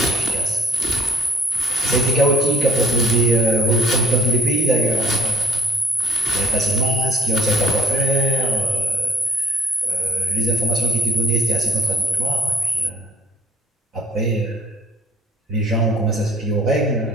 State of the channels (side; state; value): both; normal; correlation 0.55